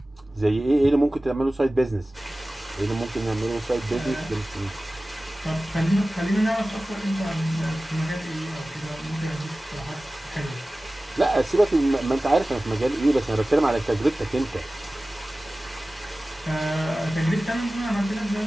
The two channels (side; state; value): both; normal; correlation 0.97